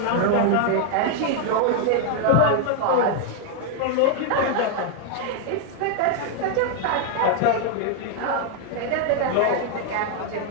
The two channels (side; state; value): both; different; correlation 0.00